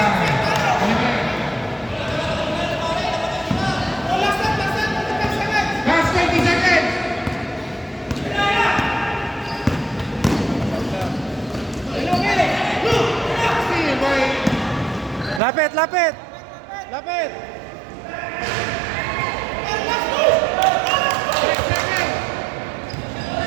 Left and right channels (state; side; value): drops out; left; at 15.4 s